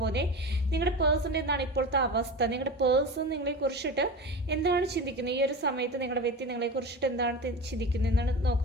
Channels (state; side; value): normal; both; correlation 0.28